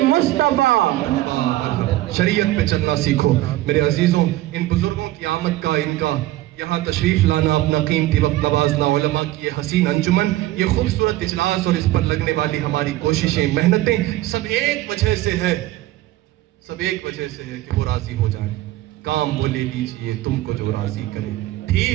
مصطفیٰ، شریعت پہ چلنا سیکھو۔ میرے عزیزوں، ان بزرگوں کی آمد کا، ان کا یہاں تشریف لانا، اپنا قیمتی وقت نوازنا، علماء کی یہ حسین انجمن، یہ خوبصورت اجلاس اور اس پر لگنے والی ہماری کوششیں، محنتیں، سب ایک وجہ سے ہے، سب ایک وجہ سے ہے کہ وہ راضی ہو جائیں۔ کام وہ لے لیجئے تم کو جو راضی کرے،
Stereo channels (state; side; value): quieter; left; 16.1 dB